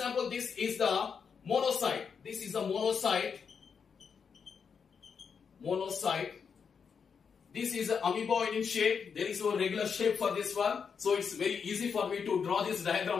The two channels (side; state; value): right; quieter; 6.3 dB